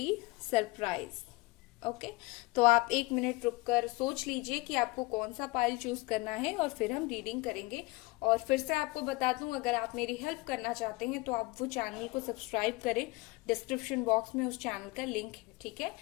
सरप्राइज। ओके। तो आप 1 मिनट रुककर सोच लीजिए कि आपको कौन सा पाइल चूज करना है और फिर हम रीडिंग करेंगे। और फिर से आपको बता दूं, अगर आप मेरी हेल्प करना चाहते हैं तो आप वो चैनल को सब्सक्राइब करें। डिस्क्रिप्शन बॉक्स में उस चैनल का लिंक है। ठीक है।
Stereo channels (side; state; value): right; quieter; 23.2 dB